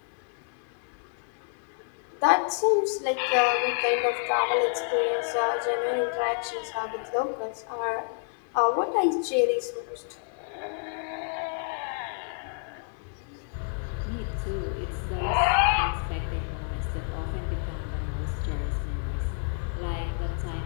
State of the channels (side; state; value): right; silent; 57 dB below the other